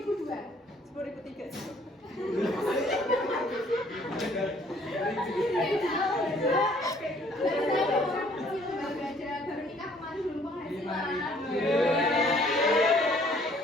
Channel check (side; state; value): both; normal; correlation 0.60